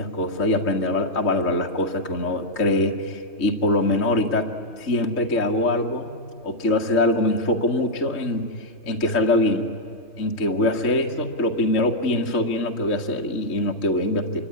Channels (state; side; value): late; right; 3.2 ms